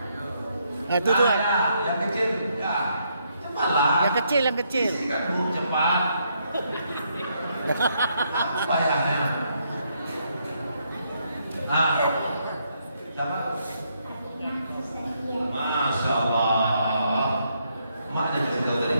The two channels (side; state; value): both; inverted; correlation -0.75